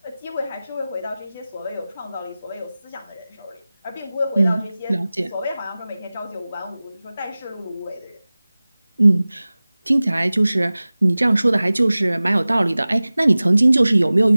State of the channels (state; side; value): inverted; both; correlation -0.98